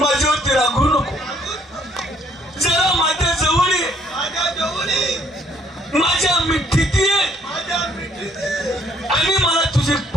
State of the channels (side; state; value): both; normal; correlation 0.65